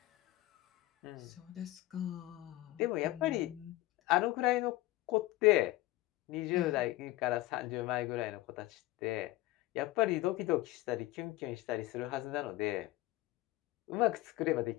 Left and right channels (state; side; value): quieter; right; 17.4 dB